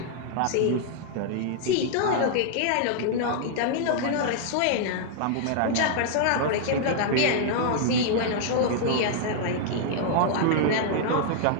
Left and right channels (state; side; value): different; both; correlation -0.01